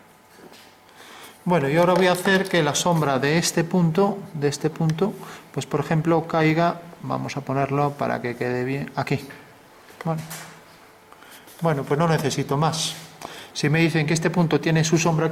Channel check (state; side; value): identical; both; correlation 1.00